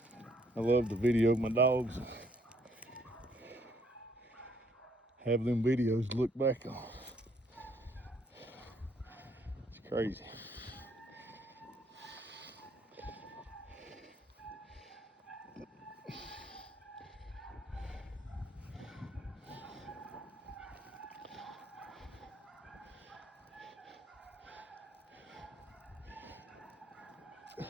I love to video my dogs. Have them videos to look back on. It's crazy.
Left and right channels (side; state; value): both; normal; correlation 0.66